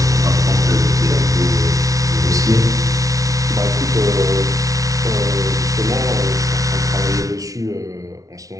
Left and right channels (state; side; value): late; left; 0.17 ms